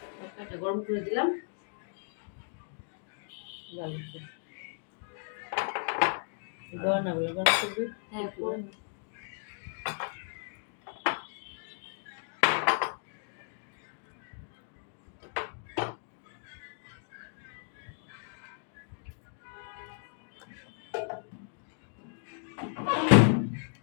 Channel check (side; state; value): right; silent; digital silence